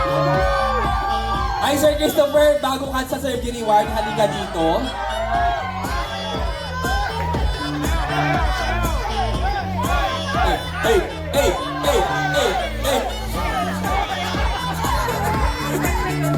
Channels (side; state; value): both; identical; correlation 1.00